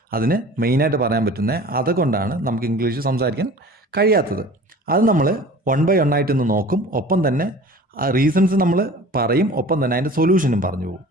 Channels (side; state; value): both; normal; correlation 0.43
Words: അതിന് മെയിനായിട്ട് പറയാൻ പറ്റുന്നത്. അതുകൊണ്ടാണ് നമുക്ക് ഇംഗ്ലീഷ് സംസാരിക്കാൻ കഴിയാത്തത്. അത് നമ്മൾ 1 by 1 ആയിട്ടൊന്ന് നോക്കും. ഒപ്പം തന്നെ റീസൺസ് നമ്മൾ പറയും, ഒപ്പം തന്നെ അതിൻ്റെ സൊല്യൂഷനും പറഞ്ഞു പോകും.